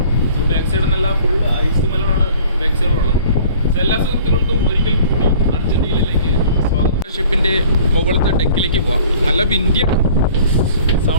ബാക്ക് സൈഡ് നല്ല ഫുൾ ഐസ് മലനാണ് ബാക്ക് സൈഡിലുള്ളത്. എല്ലാ സുഹൃത്തുക്കൾക്കും ഒരിക്കൽ കൂടി അർജന്റീനയിലേക്ക് സ്വാഗതം. ഷിപ്പിൻ്റെ മുകളിലത്തെ ഡെക്കിലേക്ക് പോവാം. നല്ല വിൻഡിയാണ്.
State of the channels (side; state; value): both; inverted; correlation -0.50